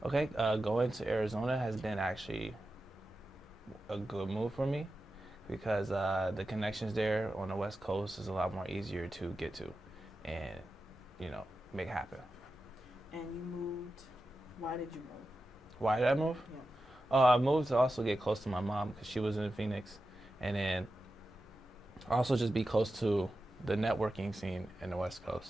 Okay, going to Arizona has been actually a good move for me because the connections there on the West Coast is a lot more easier to get to, and make happen. And you moved. Why did you move? Why did I move? Yeah. I moved to also get close to my mom because she was in Phoenix, and then also just be close to the networking scene in the West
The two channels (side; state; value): both; normal; correlation 0.92